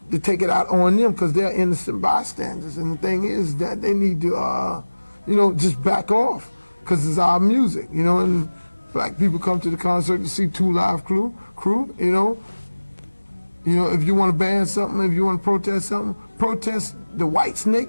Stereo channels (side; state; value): both; inverted; correlation -1.00